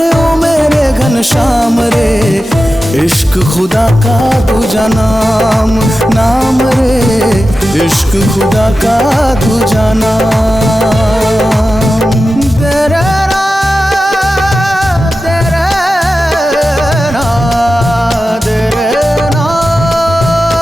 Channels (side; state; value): both; normal; correlation 0.93